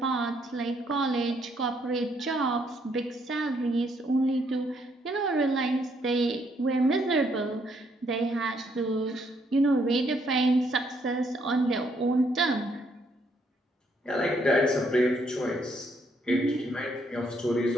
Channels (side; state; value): both; normal; correlation 0.71